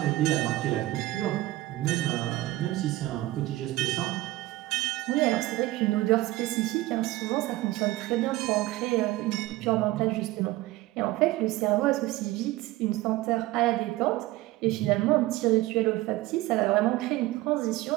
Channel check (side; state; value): left; quieter; 17.8 dB